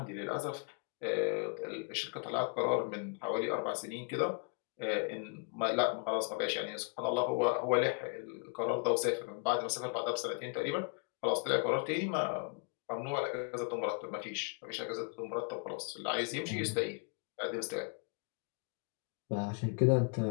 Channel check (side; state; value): right; quieter; 38.5 dB